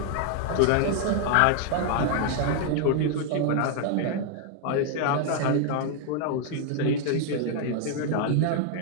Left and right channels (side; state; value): both; different; correlation 0.00